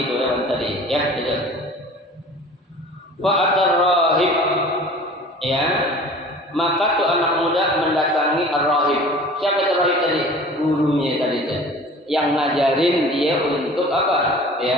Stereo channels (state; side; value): normal; both; correlation 0.44